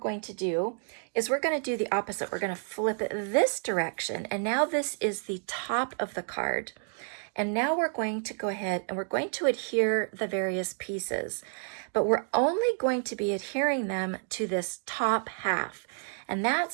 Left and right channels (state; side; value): silent; left; 58 dB below the other